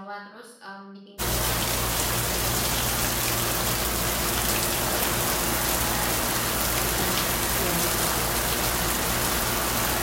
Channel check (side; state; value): both; identical; correlation 1.00